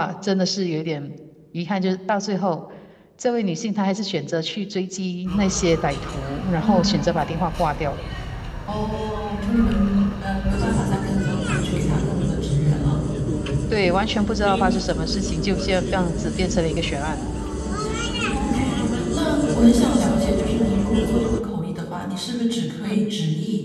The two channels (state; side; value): identical; both; correlation 1.00